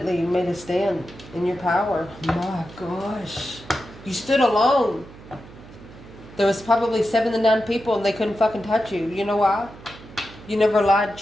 made a stand in your power. My gosh. You stood alone. There was probably 7 to 9 people and they couldn't fucking touch you. You know why? You never lied,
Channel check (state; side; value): noise; right; hum, 19 dB below the sound